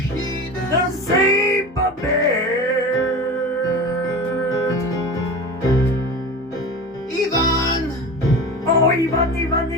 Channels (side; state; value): both; normal; correlation 0.32